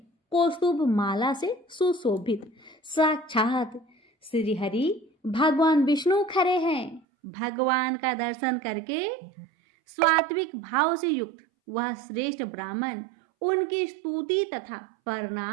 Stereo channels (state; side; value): drops out; left; at 7.0 s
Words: कौस्तुभ माला से सुशोभित साक्षात श्रीहरि भगवान विष्णु खड़े हैं। भगवान का दर्शन करके स्वात्विक भाव से युक्त वह श्रेष्ठ ब्राह्मण उनकी स्तुति तथा